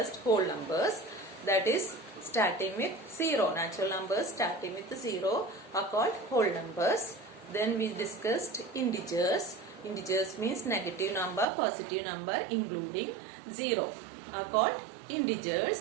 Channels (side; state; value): left; drops out; at 11.5 s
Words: whole numbers. That is starting with 0. Natural numbers starting with 0 are called whole numbers. Then we discussed integers. Integers means negative number, positive number including 0 are called